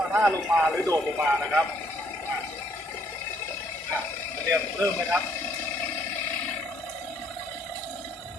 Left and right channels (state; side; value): normal; both; correlation 0.66